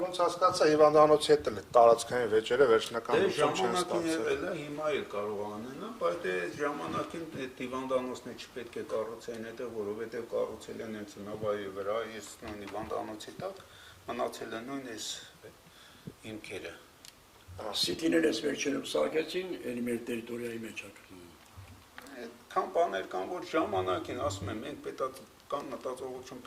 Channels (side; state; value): both; identical; correlation 1.00